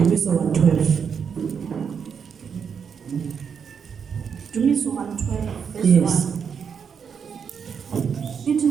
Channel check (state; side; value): quieter; left; 6.8 dB